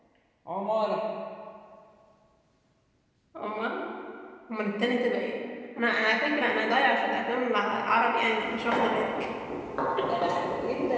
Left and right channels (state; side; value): identical; both; correlation 1.00